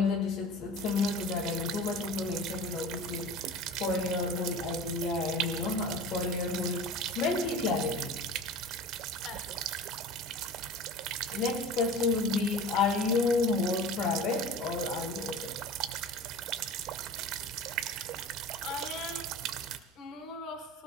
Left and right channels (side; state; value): both; normal; correlation 0.36